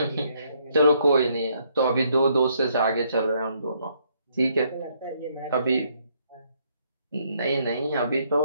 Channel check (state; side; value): inverted; both; correlation -0.70